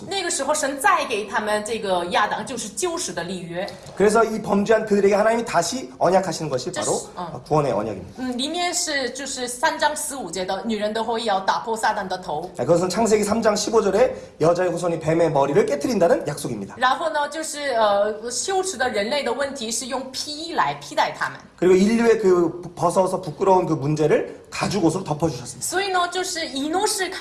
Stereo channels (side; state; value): both; identical; correlation 1.00